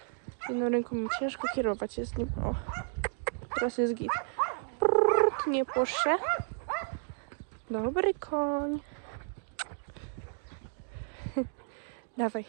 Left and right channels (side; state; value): left; silent; 56 dB below the other